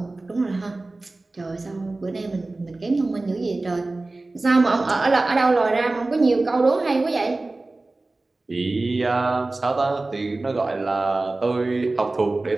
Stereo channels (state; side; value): quieter; left; 3.1 dB